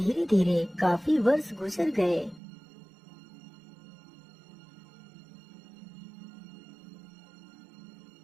धीरे काफी वर्ष गुजर गए।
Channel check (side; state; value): left; drops out; at 2.4 s